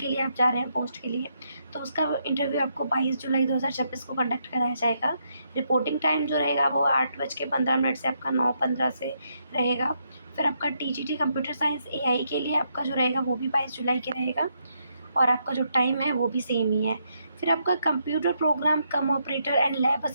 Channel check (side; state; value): both; inverted; correlation -0.78